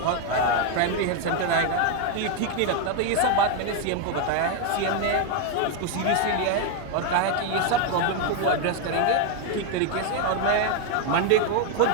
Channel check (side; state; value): both; different; correlation 0.01